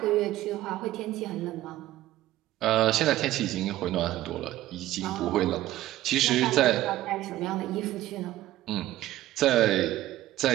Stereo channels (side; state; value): left; quieter; 14.9 dB